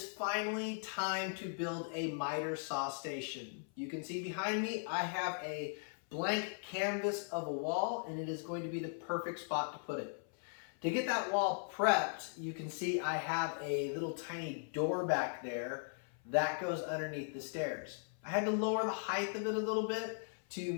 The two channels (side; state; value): right; silent; 52 dB below the other